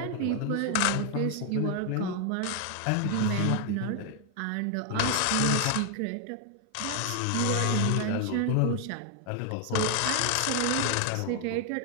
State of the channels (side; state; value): both; different; correlation 0.00